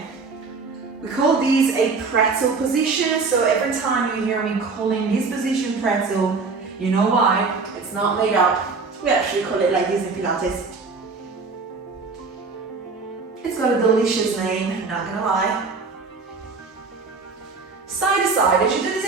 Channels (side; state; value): left; quieter; 4.4 dB